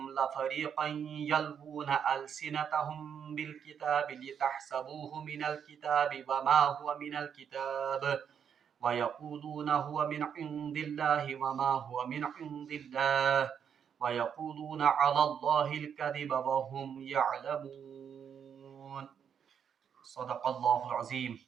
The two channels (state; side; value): quieter; left; 7.8 dB